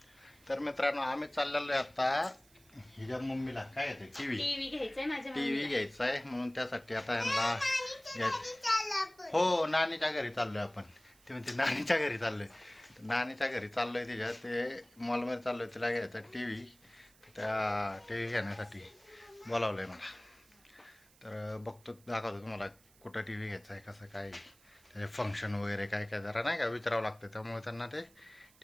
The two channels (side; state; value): right; noise; hiss, 28 dB below the sound